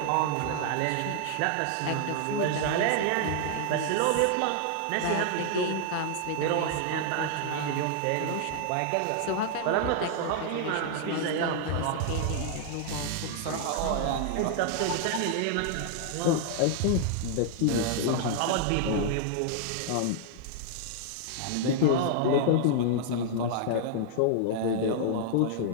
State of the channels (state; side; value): different; both; correlation -0.01